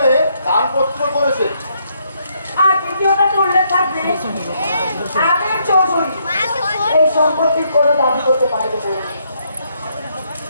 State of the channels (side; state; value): both; inverted; correlation -0.73